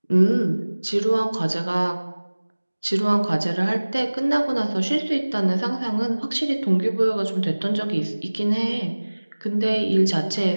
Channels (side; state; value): both; inverted; correlation -1.00